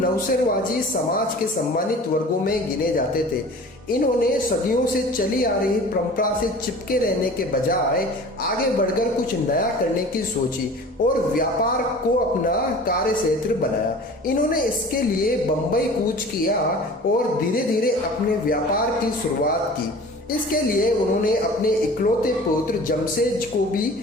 समाज के सम्मानित वर्गों में गिने जाते थे। इन्होंने सदियों से चली आ रही परंपरा से चिपके रहने के बजाय आगे बढ़कर कुछ नया करने की सोची और व्यापार को अपना कार्य क्षेत्र बनाया। इन्होंने इसके लिए बंबई कूच किया और धीरे धीरे अपने व्यापार की शुरुआत की। इसके लिए उन्होंने अपने इकलौते पुत्र जमशेद को भी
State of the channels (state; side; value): normal; both; correlation 0.42